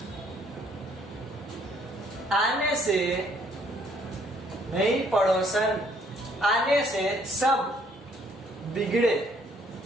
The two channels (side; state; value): both; normal; correlation 0.64